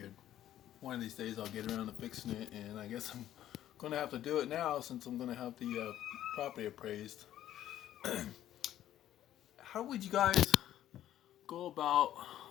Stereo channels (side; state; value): right; quieter; 12.3 dB